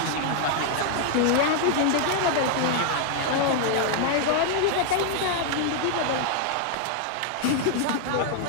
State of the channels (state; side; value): different; both; correlation 0.00